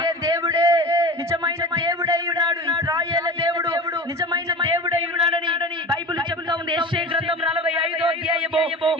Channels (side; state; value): both; normal; correlation 0.34